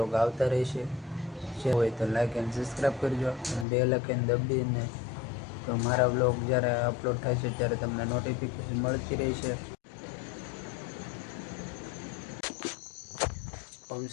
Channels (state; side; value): drops out; right; at 3.7 s